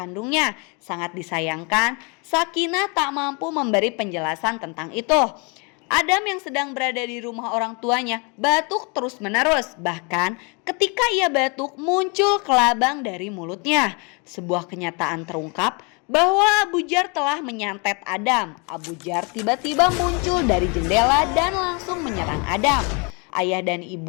Sangat disayangkan, Sakinah tak mampu memberi penjelasan tentang itu. Adam yang sedang berada di rumah orang tuanya batuk terus-menerus. Bahkan ketika ia batuk muncul kelabang dari mulutnya. Sebuah kenyataan terungkap bahwa Abu Jar telah menyantet Adam. Abu Jar tiba-tiba muncul dari jendela dan langsung menyerang Adam. Ayah dan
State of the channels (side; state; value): right; quieter; 32.1 dB